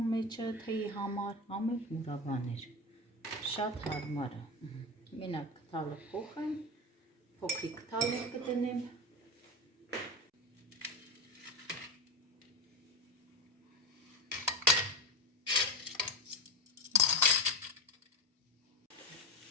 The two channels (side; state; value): both; normal; correlation 0.19